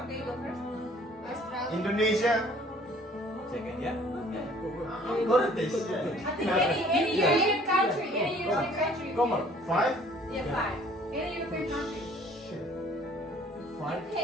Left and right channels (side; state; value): both; normal; correlation 0.55